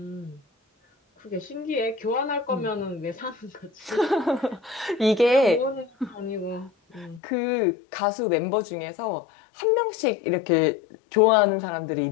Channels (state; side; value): drops out; right; at 7.2 s